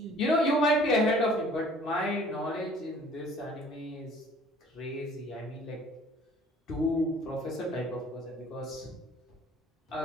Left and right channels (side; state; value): both; normal; correlation 0.53